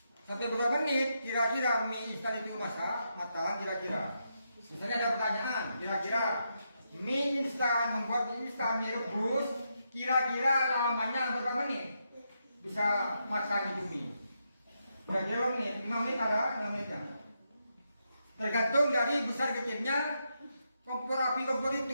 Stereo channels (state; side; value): inverted; both; correlation -0.82